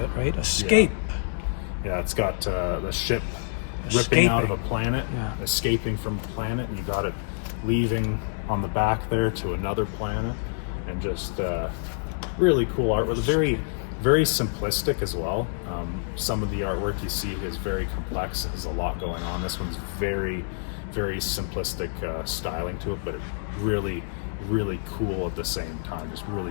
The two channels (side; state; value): right; silent; digital silence